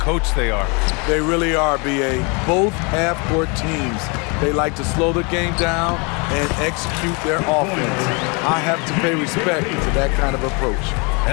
they are. They really are, BA. Both half-court teams, they like to slow the game down and execute their offense. I have to pay respect to that kind of approach.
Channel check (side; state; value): right; quieter; 31.6 dB